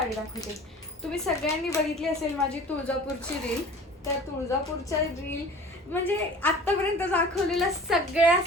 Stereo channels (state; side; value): normal; both; correlation 0.43